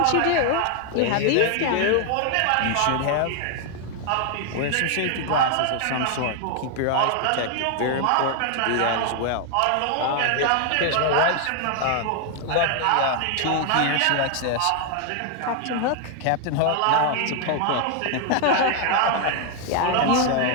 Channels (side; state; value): both; different; correlation 0.00